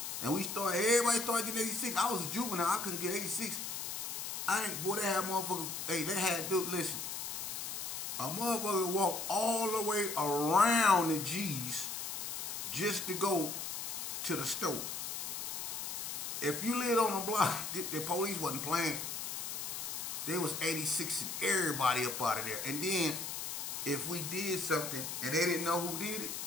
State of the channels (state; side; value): noise; left; hiss, 5 dB below the sound